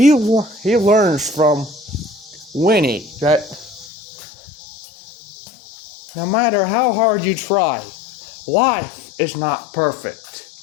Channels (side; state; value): right; drops out; at 3.9 s